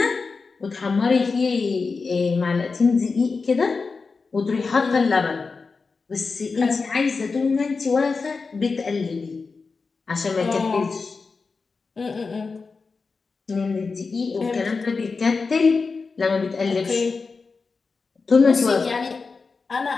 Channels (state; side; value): quieter; right; 4.5 dB